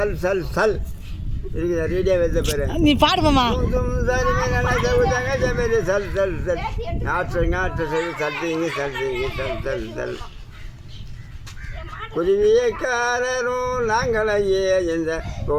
சல் சல் இருக்குதா ரேடியோ வைத்த பேர் நீ பாடுமாமா. தும் தும் சாரி மைனா சங்குசாங்க சமேதி சல் சல் சல் நாற்று சரி சல்திங்க சல்திங்க சல் சல் சல் குருவியக்காரரும் நாங்களையே எந்த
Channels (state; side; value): identical; both; correlation 1.00